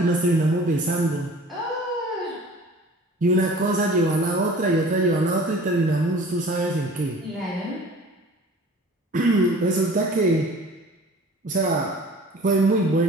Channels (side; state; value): both; normal; correlation 0.45